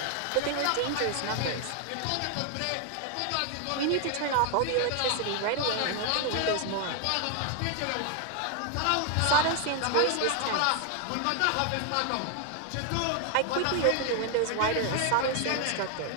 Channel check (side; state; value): both; different; correlation 0.00